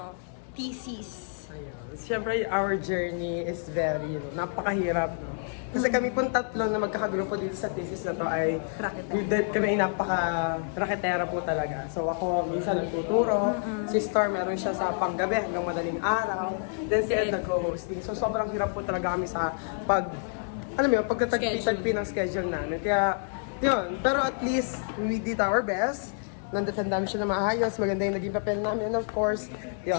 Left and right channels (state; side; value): silent; right; 59 dB below the other